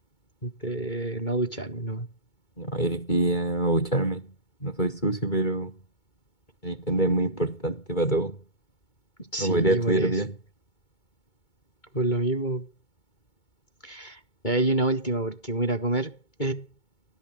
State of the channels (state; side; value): late; right; 2.2 ms